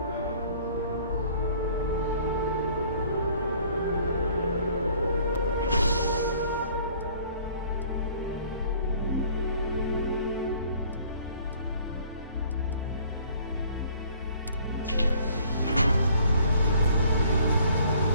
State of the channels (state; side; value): inverted; both; correlation -0.56